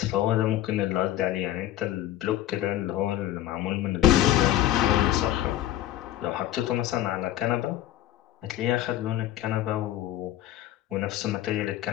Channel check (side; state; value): right; quieter; 13.4 dB